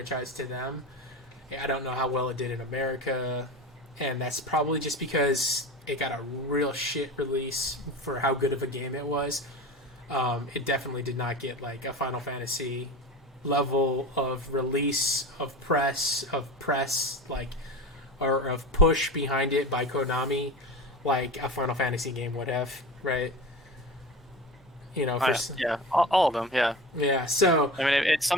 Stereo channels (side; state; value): both; normal; correlation 0.30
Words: to them. I don't know how well it did in America, and that's probably just because it got a real shit release for how good of a game it was. It definitely did not get like a Final Fantasy level of release of press like or of push behind it by Konami. Like a Final Fantasy game would have, right? yeah, all of them, yeah. Yeah, so I mean, it